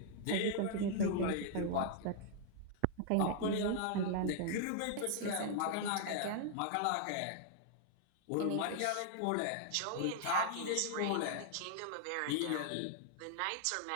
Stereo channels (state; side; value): different; both; correlation 0.00